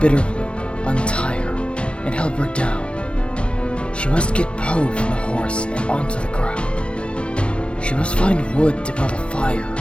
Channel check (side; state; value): right; late; 0.059 ms